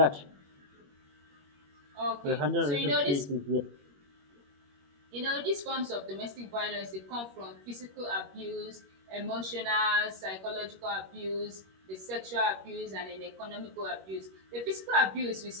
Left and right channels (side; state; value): left; late; 21 ms